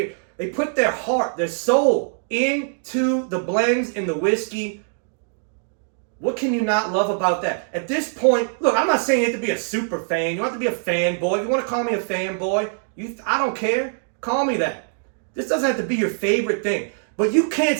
put their heart, their soul into the blends in the whiskey. What can you not love about that? At this point, look, I'm not saying you have to be a super fan. You don't have to be a fanboy. If you want to call me a fanboy, I don't care. Call me that. This doesn't have to be your favorite thing. But you can't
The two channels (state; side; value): silent; left; digital silence